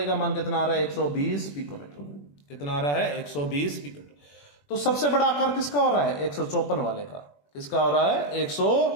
का मान कितना आ रहा है, 120 पिकोमीटर। कितना आ रहा है, 120 पिकोमीटर। तो सबसे बड़ा आकार किसका हो रहा है, 154 वाले का। किसका हो रहा है,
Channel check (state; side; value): late; right; 21 ms